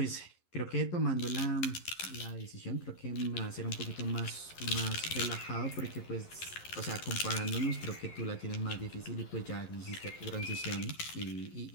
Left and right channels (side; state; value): right; late; 11 ms